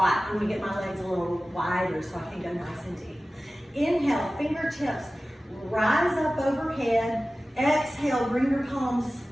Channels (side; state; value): both; normal; correlation 0.96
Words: I'm gonna get my legs a little wider so I can go nice and deep. Inhale, fingertips rise up overhead. Exhale, bring your palms